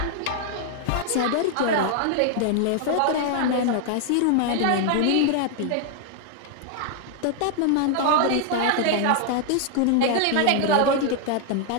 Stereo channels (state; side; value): different; both; correlation 0.00